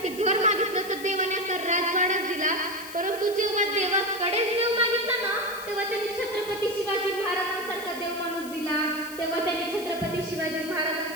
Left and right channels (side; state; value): left; noise; hiss, 15 dB below the sound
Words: घर मागितलं तर देवाने राजवाडाच दिला. परंतु जेव्हा देवाकडे देव मागितला ना